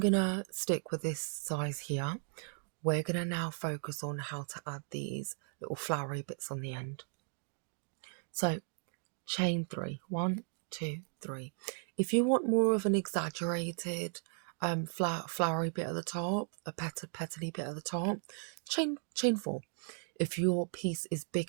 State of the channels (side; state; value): left; silent; 54 dB below the other